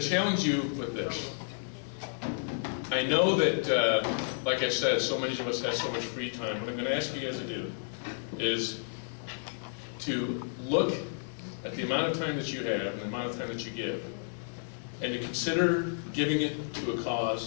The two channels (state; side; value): silent; right; digital silence